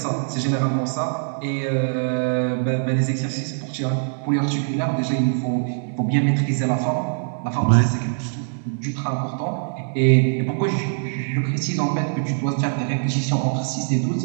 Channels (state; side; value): silent; left; digital silence